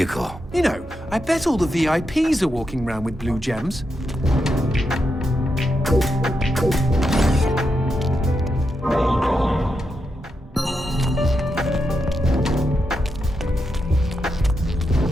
you know, I bet all the VIPs are walking around with blue gems.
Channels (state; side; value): normal; both; correlation 0.85